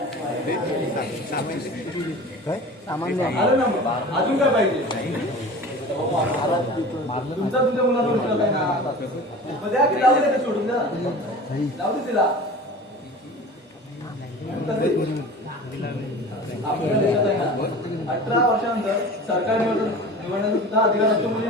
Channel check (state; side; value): normal; both; correlation 0.38